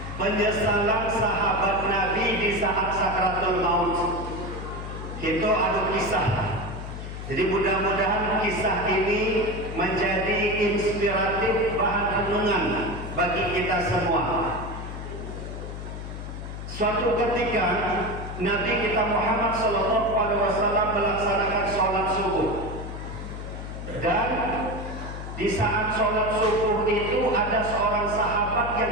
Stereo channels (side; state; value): left; noise; hum, 8 dB below the sound